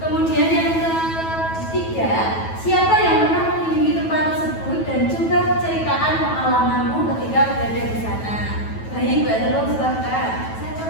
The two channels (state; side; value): late; right; 9.2 ms